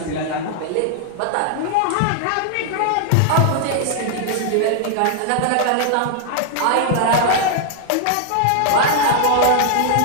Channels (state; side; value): different; both; correlation 0.00